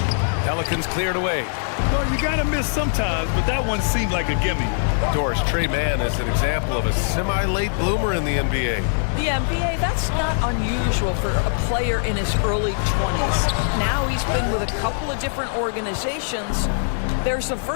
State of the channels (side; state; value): right; silent; digital silence